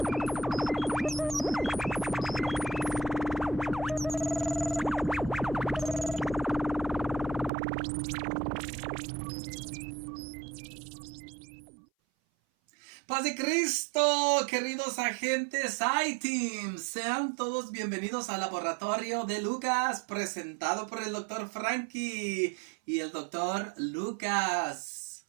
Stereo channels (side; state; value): left; drops out; at 7.5 s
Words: de Cristo, queridos agentes iTeam, sean todos bienvenidos al laboratorio de Lucas, presentado por el Dr. Frankie y el Dr. Lucas.